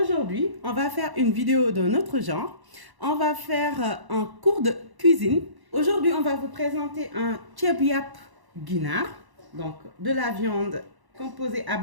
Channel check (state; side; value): late; left; 1.1 ms